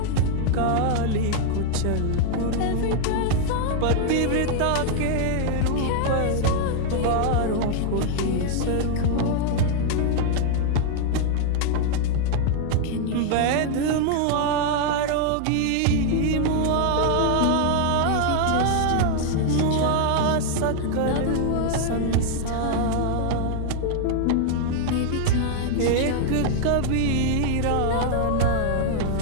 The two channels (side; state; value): both; different; correlation 0.00